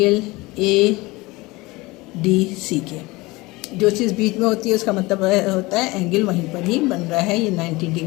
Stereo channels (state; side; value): quieter; right; 22.1 dB